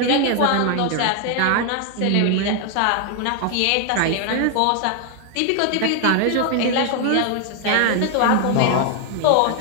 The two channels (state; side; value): different; both; correlation 0.00